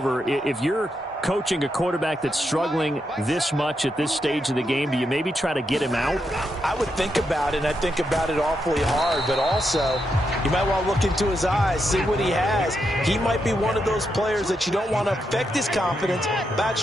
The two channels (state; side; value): normal; both; correlation 0.83